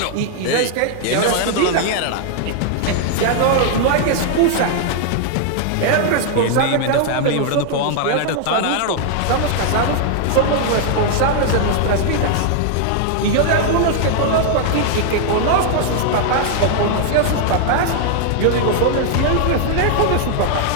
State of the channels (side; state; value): both; different; correlation 0.00